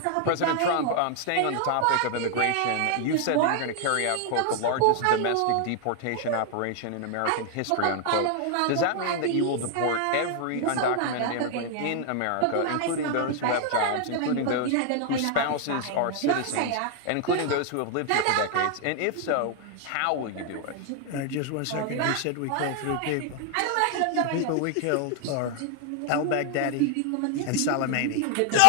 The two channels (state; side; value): different; both; correlation 0.00